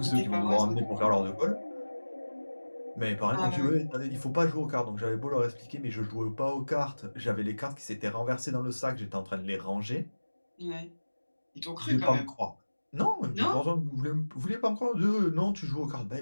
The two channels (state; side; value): inverted; both; correlation -1.00